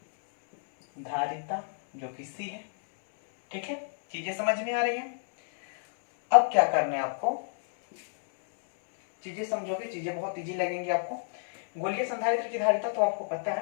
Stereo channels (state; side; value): silent; right; 58 dB below the other